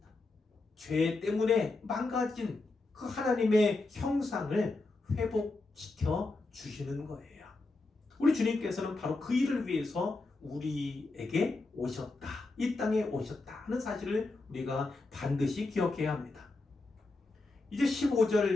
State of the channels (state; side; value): quieter; right; 3.3 dB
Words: 죄 때문에 망가진 그 하나님의 형상을 회복시켜 주시는 거예요. 우리 주님께서는 바로 그 일을 위해서 우리에게 오셨다, 이 땅에 오셨다 하는 사실을 우리가 반드시 기억해야 합니다. 이제 15절,